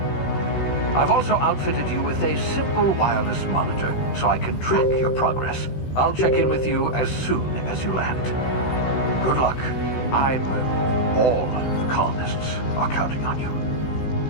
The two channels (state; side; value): late; right; 16 ms